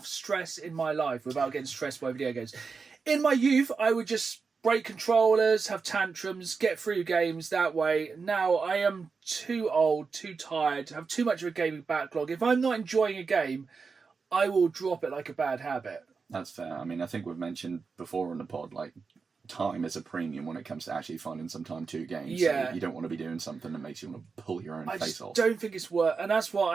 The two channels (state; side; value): quieter; left; 5.0 dB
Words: stress in my life without getting stressed by video games. In my youth, I would just break controllers, have tantrums, get through games that way. Now I am too old, too tired, have too much of a gaming backlog. If I'm not enjoying a game, I will drop it like a bad habit. That's fair. I mean, I think we've mentioned before on the pod, like, time is a premium when it comes to actually finding some time to games. Yeah. So you don't want to be doing something that makes you want to pull your own I face just off. don't think it's worth, and that's